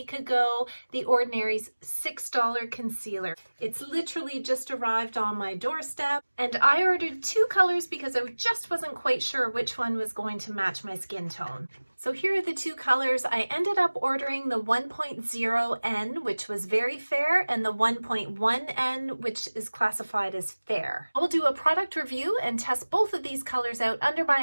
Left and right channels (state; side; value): inverted; both; correlation -1.00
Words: ago, The Ordinary's $6 concealer. It's literally just arrived on my doorstep and I ordered 2 colors because I just wasn't quite sure which one was going to match my skin tone. So here are the 2 colors. I ended up ordering the 1.0N, which was very fair, and the 1.1N, which is classified as fair. I will do a product review and test both of these colors out under